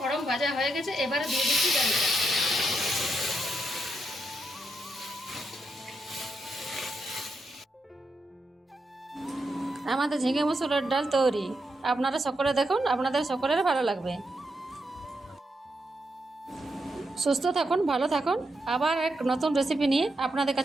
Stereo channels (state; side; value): normal; both; correlation 0.83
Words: ভাজা হয়ে গেছে, এবারে দিয়ে দিচ্ছি ডালটা। আমাদের ঝিঙে মসুরের ডাল তৈরি। আপনারা সকলে দেখুন, আপনাদের সকলের ভালো লাগবে। সুস্থ থাকুন, ভালো থাকুন। আবার এক নতুন রেসিপি নিয়ে আপনাদের